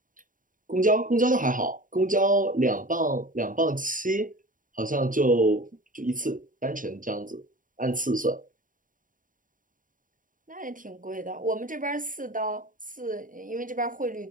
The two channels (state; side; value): late; left; 0.39 ms